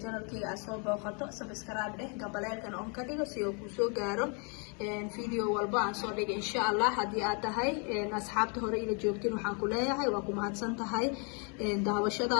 janalkayga aad soo booqato subscribe dheh gabaleelkan on ka dhigo si uu ku soo gaaro video walba aan soo dhigo insha Allah hadii aad tahay asxaabta hore ila joogtiin waxaan ku leeyahay waa ku mahadsan tahay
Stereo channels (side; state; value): right; quieter; 36.1 dB